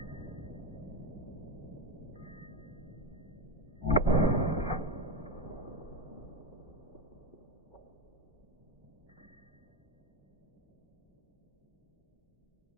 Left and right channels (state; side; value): late; left; 1.0 ms